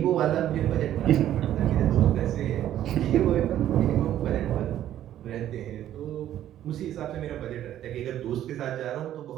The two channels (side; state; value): left; quieter; 11.9 dB